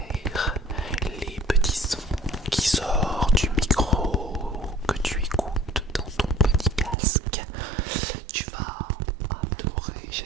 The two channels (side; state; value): left; drops out; at 7.0 s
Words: les petits sons qui sortent du micro que tu écoutes dans ton petit casque. Tu vas adorer,